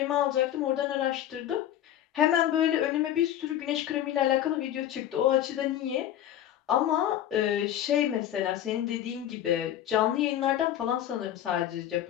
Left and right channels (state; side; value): quieter; right; 11.6 dB